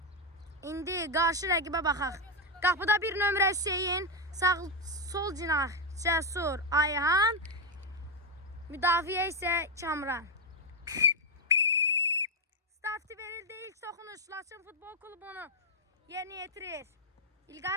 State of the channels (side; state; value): both; normal; correlation 0.04